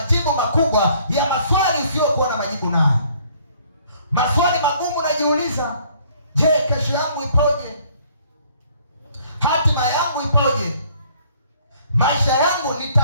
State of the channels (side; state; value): both; inverted; correlation -0.60